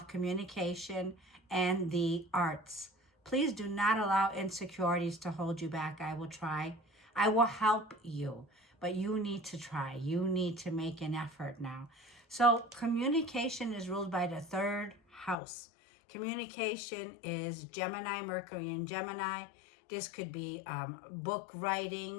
communication and the arts. Please do not allow insecurities to hold you back. I will try. I will help you. But you need to try. You need to make an effort now. So communication is ruled by the third house. Communication is Gemini, Mercury in Gemini. This could be book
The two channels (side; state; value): right; drops out; at 15.4 s